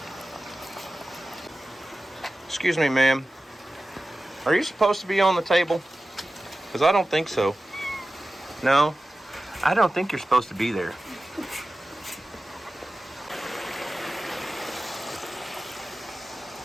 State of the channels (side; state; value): both; normal; correlation 0.95